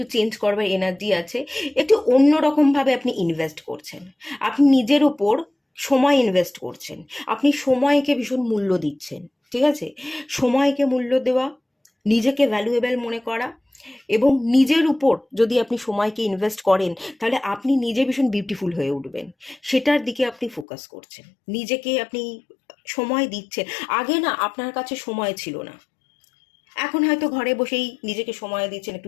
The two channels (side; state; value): right; drops out; at 20.7 s